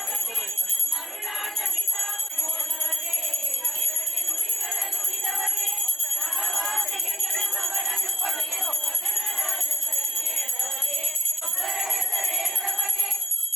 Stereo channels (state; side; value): normal; both; correlation 0.76